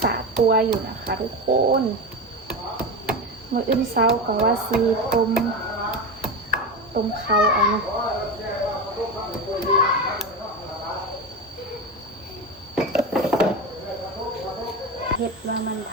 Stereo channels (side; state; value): both; normal; correlation 0.21